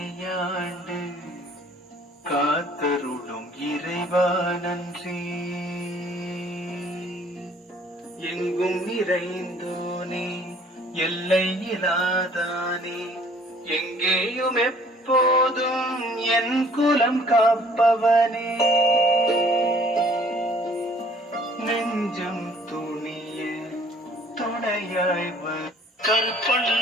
காத்தருளும் இறைவா நன்றி. எங்கும் நிறைந்தோனே எல்லை இல்லாதானே எங்கேயும் எப்போதும் என் குலம் காப்பவனே. நெஞ்சம் துணிய துணையாய்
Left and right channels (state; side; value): normal; both; correlation 0.56